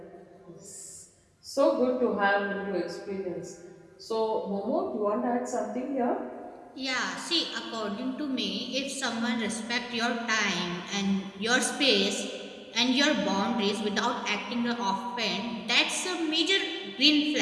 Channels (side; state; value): both; identical; correlation 1.00